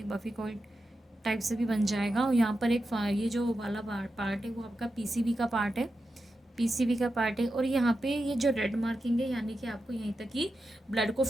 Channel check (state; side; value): normal; both; correlation 0.89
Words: बफिकॉइड टाइप से भी बन जाएगा। और यहाँ पर एक ये जो वाला पार्ट है वो आपका PCV का पार्ट है, PCV का पार्ट है। और यहाँ पे ये जो रेड मार्किंग है, यानी कि आपको यहीं तक ही ब्लड को